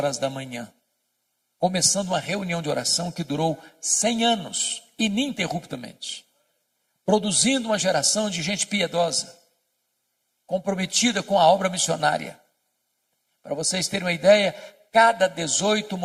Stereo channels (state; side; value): identical; both; correlation 1.00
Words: da manhã, começando uma reunião de oração que durou 100 anos, ininterruptamente, produzindo uma geração de gente piedosa, comprometida com a obra missionária. Para vocês terem uma ideia, cada 18